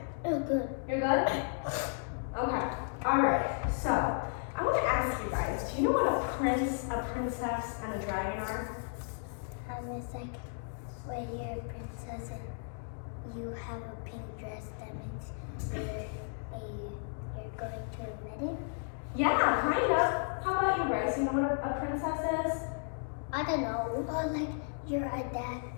Oh, good. You're good? Okay. All right. So I want to ask you guys, do you know what a prince, a princess, and a dragon are? It's like when you're a princess and you have a pink dress, that means you're going to a wedding. Yeah, kind of. How about you, Grace? You know what a princess is? I don't know. Or like you're a dad,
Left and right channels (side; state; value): right; silent; digital silence